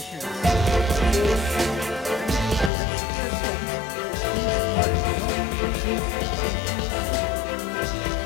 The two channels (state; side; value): drops out; right; at 2.7 s